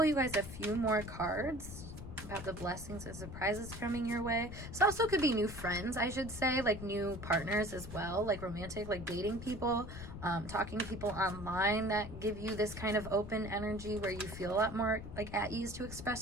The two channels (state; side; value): noise; left; rumble, 10 dB below the sound